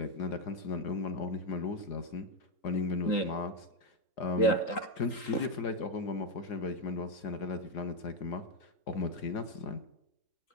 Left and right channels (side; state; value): right; late; 3.8 ms